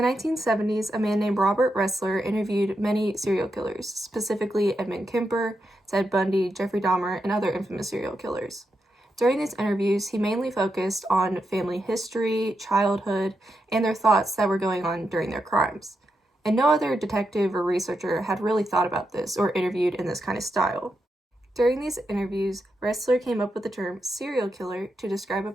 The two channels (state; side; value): normal; both; correlation 0.85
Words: 1970s, a man named Robert Ressler interviewed many serial killers, specifically Edmund Kemper, Ted Bundy, Jeffrey Dahmer, and other infamous serial killers. During these interviews, he mainly focused on family history, childhood, and their thoughts that were going on during their crimes. And no other detective or researcher had really thought about this or interviewed in this kind of style. During these interviews, Ressler came up with the term serial killer to describe a